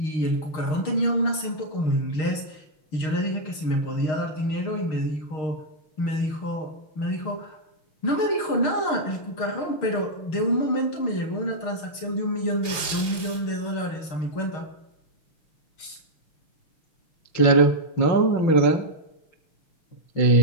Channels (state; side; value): late; right; 6.5 ms